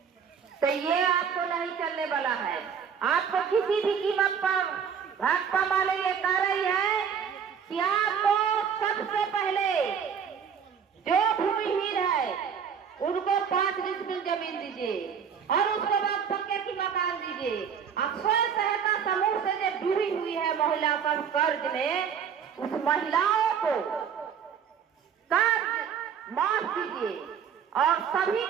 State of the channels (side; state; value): left; quieter; 7.3 dB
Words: तो ये आपको नहीं चलने वाला है। आपको किसी भी कीमत पर भाजपा वाले ये कह रही है कि आपको सबसे पहले जो भूमिहीन है उनको 5 डिसमिल जमीन दीजिए और उसके बाद पक्के की मकान दीजिए। अब स्वयं सहायता समूह से जो जुड़ी हुई है महिला पर कर्ज में, उस महिलाओं को कर्ज माफ कीजिए और सभी